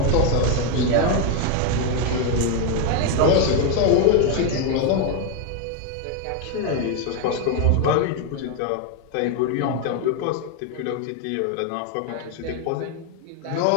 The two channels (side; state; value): both; different; correlation 0.01